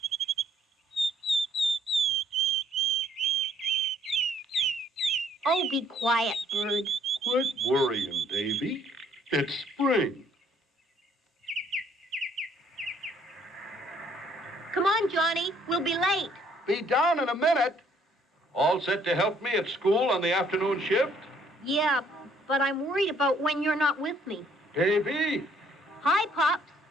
Oh, be quiet, bird. Quit worrying, Davey. It's spring. Come on, Johnny. We'll be late. Be down in a minute. All set to help me at school on the afternoon shift? Yeah, but I'm worried about when you're not with me. Davey, Hi, Pops.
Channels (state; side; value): normal; both; correlation 0.64